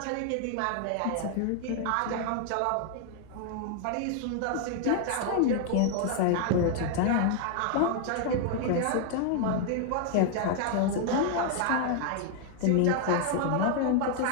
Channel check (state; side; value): different; both; correlation 0.00